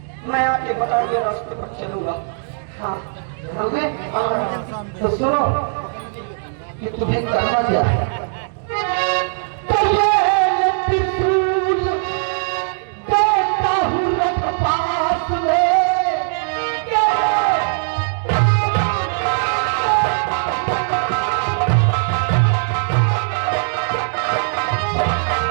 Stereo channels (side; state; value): left; silent; digital silence